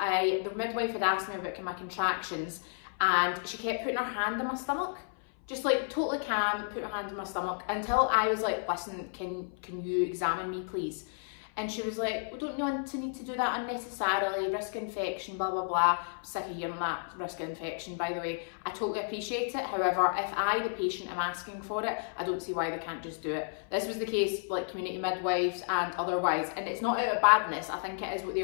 midwife had asked me about my contractions and she kept putting her hand on my stomach, just like totally calm, put her hand on my stomach until I was like, listen, can you examine me please? And she was like, we don't want to need to do that unnecessarily, risk infection, blah, blah, blah. I'm sick of hearing that, risk infection, by the way. I totally appreciate it. However, if I, the patient, am asking for it, I don't see why they can't just do it. This was the case, like community midwives and otherwise. And it's not out of badness. I think it is what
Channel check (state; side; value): silent; right; 56 dB below the other